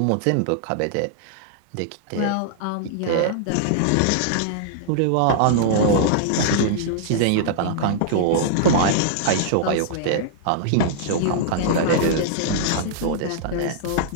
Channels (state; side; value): different; both; correlation -0.01